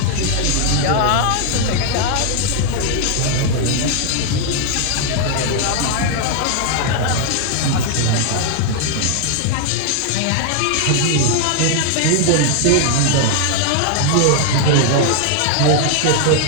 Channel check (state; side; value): different; both; correlation 0.00